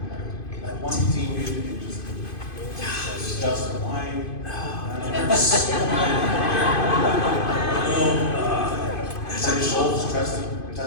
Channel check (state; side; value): late; right; 2.5 ms